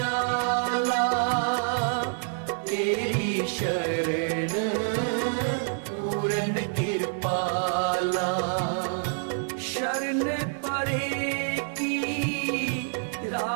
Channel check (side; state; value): left; silent; digital silence